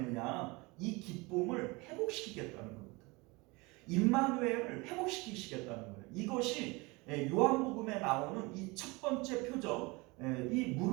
이 기쁨을 회복시키겠다는 겁니다. 임마누엘을 회복시키시겠다는 거예요. 이것이 요한복음에 나오는 이 첫 번째 표적, 이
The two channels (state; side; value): quieter; left; 25.2 dB